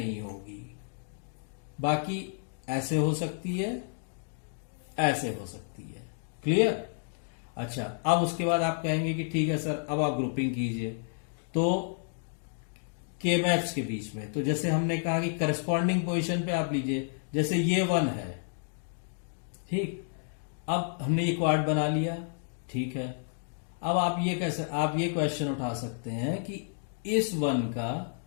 होगी। बाकी ऐसे हो सकती है, ऐसे हो सकती है। क्लियर। अच्छा, अब उसके बाद आप कहेंगे कि ठीक है सर, अब आप ग्रुपिंग कीजिए। तो के मैप्स के बीच में, तो जैसे हमने कहा कि करस्पॉन्डिंग पोजीशन पे आप लीजिए, जैसे ये 1 है। ठीक, अब हमने ये क्वाड बना लिया। ठीक है, अब आप ये क्वेश्चन उठा सकते हैं कि इस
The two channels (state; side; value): silent; right; digital silence